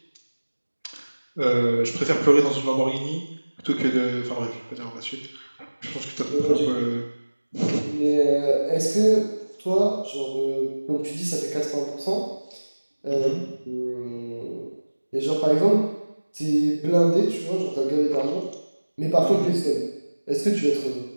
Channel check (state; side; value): inverted; both; correlation -1.00